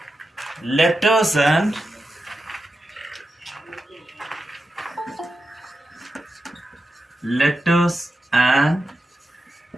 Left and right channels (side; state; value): both; normal; correlation 0.90